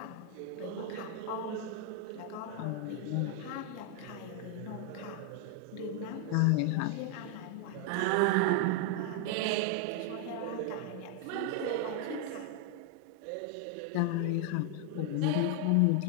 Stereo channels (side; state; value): both; different; correlation 0.00